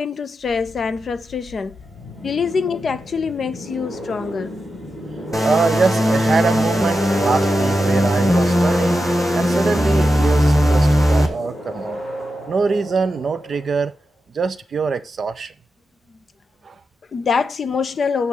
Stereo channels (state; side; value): normal; both; correlation 0.89